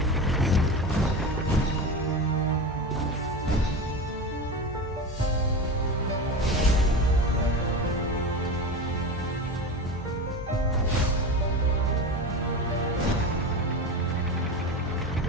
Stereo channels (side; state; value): both; normal; correlation 0.25